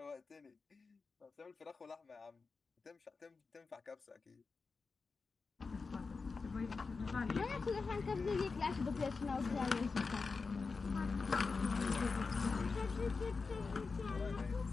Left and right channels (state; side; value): quieter; right; 4.5 dB